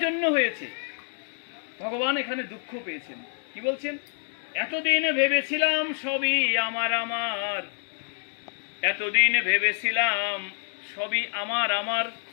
জন্য হয়েছে, ভগবান এখানে দুঃখ পেয়েছেন। কি বলছেন? এতদিন ভেবেছিলাম সবই আমার আমার, এতদিন ভেবেছিলাম সবই আমার আমার,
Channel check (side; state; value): right; silent; digital silence